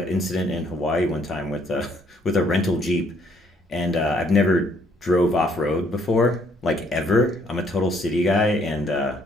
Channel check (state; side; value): normal; both; correlation 0.66